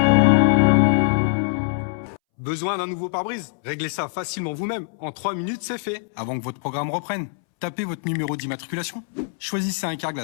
Besoin d'un nouveau pare-brise? Réglez ça facilement vous-même. En 3 minutes, c'est fait. Avant que votre programme reprenne. Tapez votre numéro d'immatriculation. Choisissez un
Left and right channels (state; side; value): silent; right; 63 dB below the other